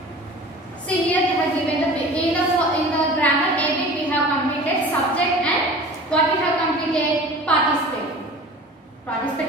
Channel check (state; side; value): normal; both; correlation 0.40